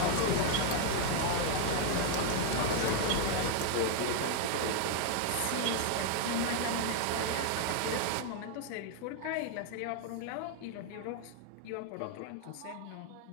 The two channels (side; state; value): both; different; correlation 0.00